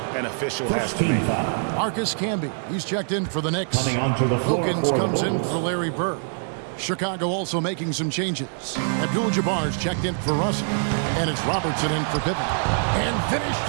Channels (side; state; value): left; silent; 62 dB below the other